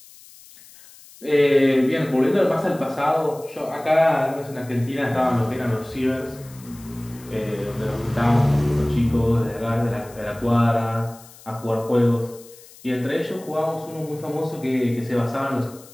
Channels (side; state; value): left; noise; hiss, 22 dB below the sound